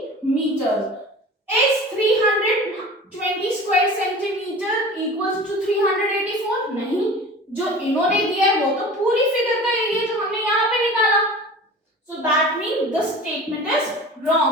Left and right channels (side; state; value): both; normal; correlation 0.39